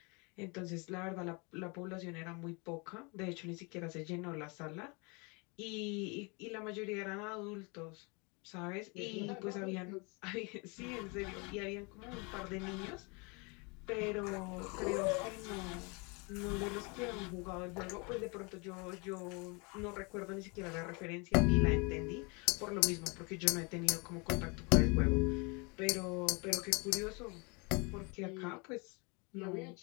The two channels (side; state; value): right; quieter; 30.5 dB